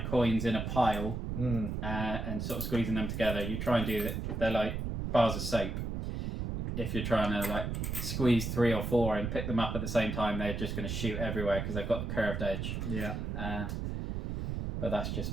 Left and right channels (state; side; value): noise; right; rumble, 3 dB below the sound